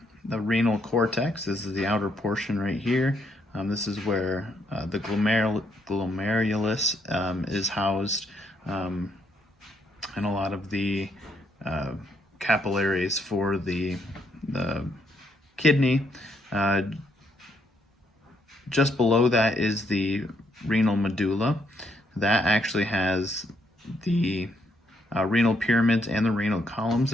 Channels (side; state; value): both; normal; correlation 0.73